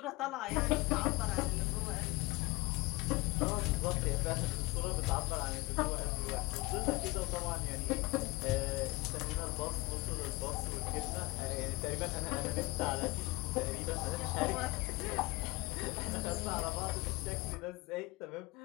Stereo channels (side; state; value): right; quieter; 22.3 dB